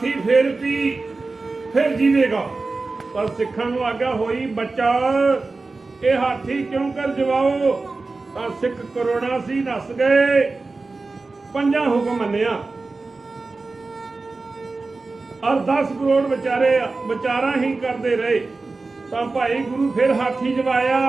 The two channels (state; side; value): quieter; left; 3.7 dB